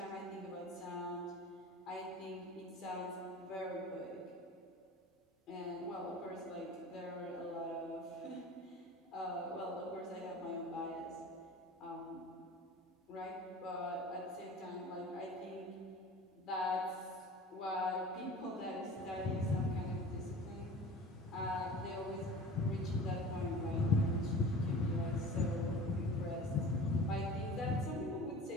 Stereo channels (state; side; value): normal; both; correlation 0.40